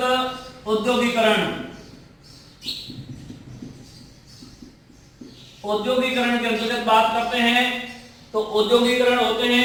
औद्योगिकीकरण। औद्योगिकीकरण के अंतर्गत बात करते हैं तो औद्योगिकीकरण होते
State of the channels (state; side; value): identical; both; correlation 1.00